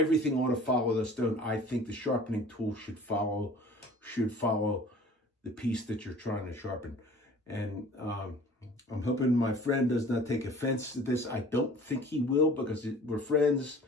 ought to follow the stone. I think the sharpening tool should follow the piece that you're trying to sharpen. And I'm hoping my friend does not take offense to this. I don't think he will, because we're friends.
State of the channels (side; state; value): both; normal; correlation 0.47